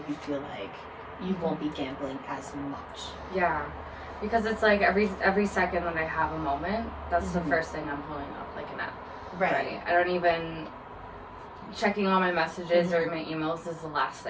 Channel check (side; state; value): both; identical; correlation 1.00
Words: feel like you won't be gambling as much. Yeah, because it's like every second that I have a moment, that's the first thing I'm pulling up, like an app. Right. I don't even checking all my messages or my emails is the last